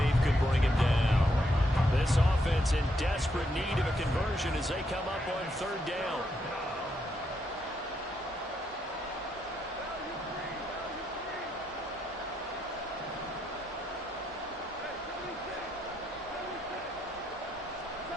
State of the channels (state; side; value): normal; both; correlation 0.78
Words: could bring him down. This offense in desperate need of a conversion as they come up on 3rd down.